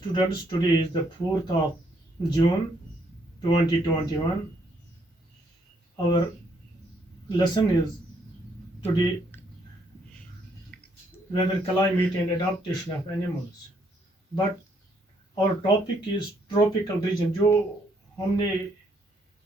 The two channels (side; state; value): both; normal; correlation 0.71